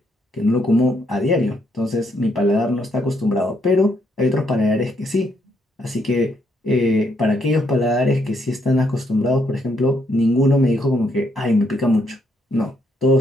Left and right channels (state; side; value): normal; both; correlation 0.74